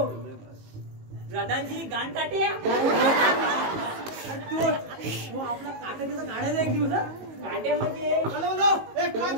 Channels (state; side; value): late; left; 18 ms